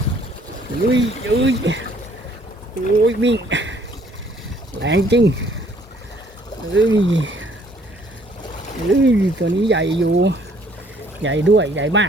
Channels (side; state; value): both; normal; correlation 0.62